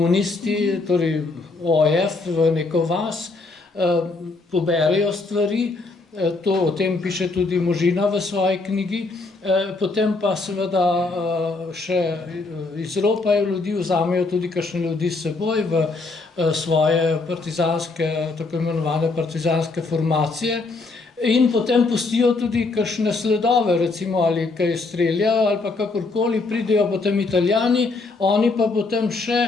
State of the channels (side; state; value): right; quieter; 3.6 dB